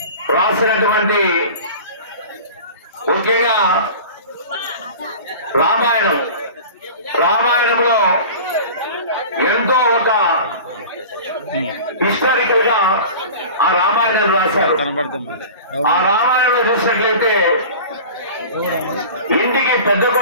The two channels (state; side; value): inverted; both; correlation -0.37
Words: రాసినటువంటి ముఖ్యంగా రామాయణంలో ఎంతో ఒక హిస్టారికల్ గా ఆ రామాయణం రాశారు. ఆ రామాయణంలో చూసినట్లయితే ఇంటికి పెద్ద